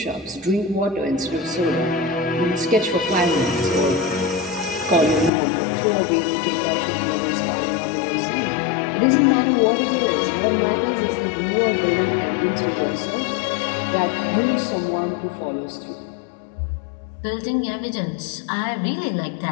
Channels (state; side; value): drops out; right; at 5.3 s